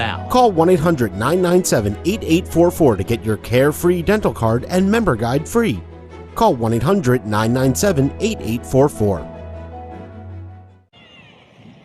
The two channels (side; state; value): both; identical; correlation 1.00